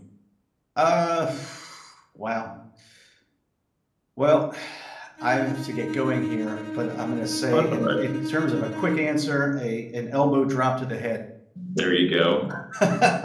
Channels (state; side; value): identical; both; correlation 1.00